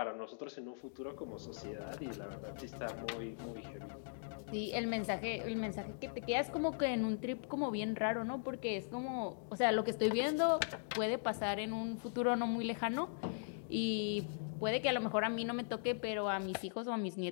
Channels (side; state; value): right; silent; digital silence